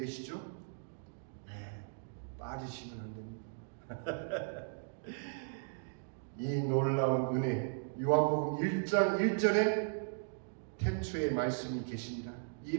네, 빠지시면 안 됩니다. 이 놀라운 은혜, 요한복음 1장 1절에 태초에 말씀이 계십니다. 이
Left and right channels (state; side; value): silent; left; digital silence